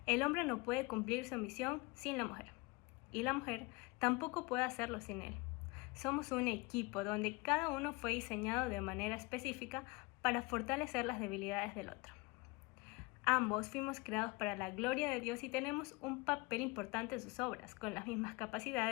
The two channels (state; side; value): quieter; right; 24.8 dB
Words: El hombre no puede cumplir su misión sin la mujer, y la mujer tampoco puede hacerlo sin él. Somos un equipo donde cada uno fue diseñado de manera específica para fortalecer las debilidades del otro. Ambos fuimos creados para la gloria de Dios y tenemos un papel importante en sus obras, con las mismas